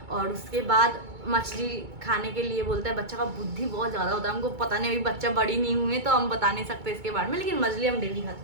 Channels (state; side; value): late; left; 2.2 ms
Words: और उसके बाद मछली खाने के लिए बोलता है, बच्चा का बुद्धि बहुत ज़्यादा होता है, हमको पता नहीं, अभी बच्चा बड़ी नहीं हुई तो हम बता नहीं सकते इसके बारे में, लेकिन मछली हम डेली खाते